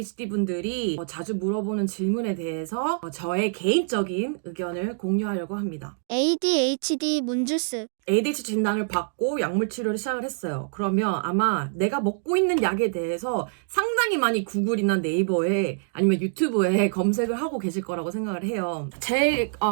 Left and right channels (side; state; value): left; silent; digital silence